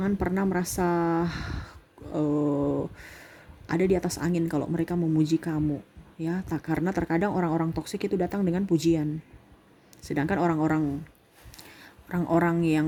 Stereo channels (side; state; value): both; identical; correlation 1.00